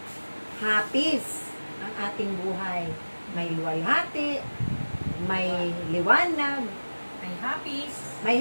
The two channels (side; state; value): both; inverted; correlation -1.00